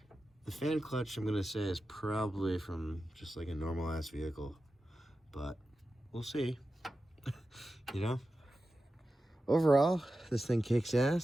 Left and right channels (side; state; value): both; normal; correlation 0.92